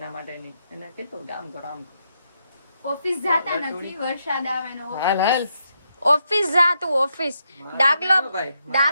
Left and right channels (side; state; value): both; inverted; correlation -0.80